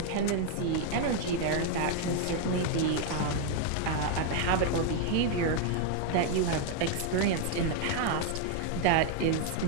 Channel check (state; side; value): different; both; correlation 0.00